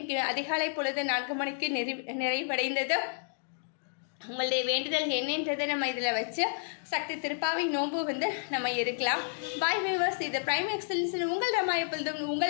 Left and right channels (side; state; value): right; silent; digital silence